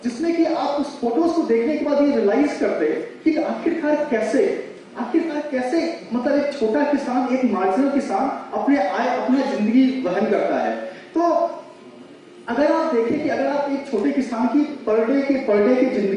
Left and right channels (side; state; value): both; identical; correlation 1.00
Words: जिसमें कि आप उस फोटोज को देखने के बाद ये रियलाइज करते कि आखिरकार कैसे मतलब एक छोटा किसान, एक मार्जिनल किसान अपने जिंदगी वहन करता है। तो अगर आप देखें कि अगर आप एक छोटे किसान की पर डे की